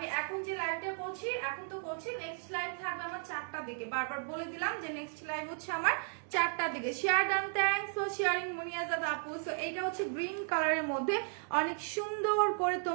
এখন যে লাইভটা করছি এখন তো করছি, নেক্সট লাইভ থাকবে আমার 4টার দিকে, বারবার বলে দিলাম যে নেক্সট লাইভ হচ্ছে আমার 4টার দিকে। Share done, thanks for sharing Muniazad আপু। সো এটা হচ্ছে গ্রিন কালারের মধ্যে অনেক সুন্দর করে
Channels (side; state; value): left; silent; 55 dB below the other